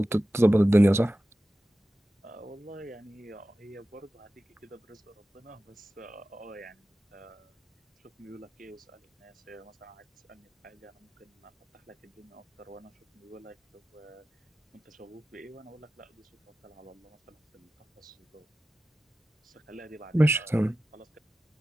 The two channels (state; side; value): normal; both; correlation 0.94